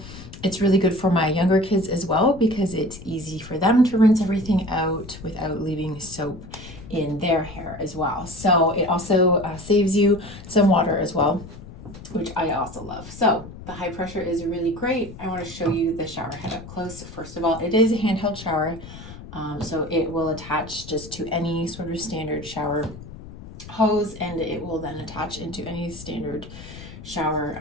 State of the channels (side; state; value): left; noise; rumble, 15 dB below the sound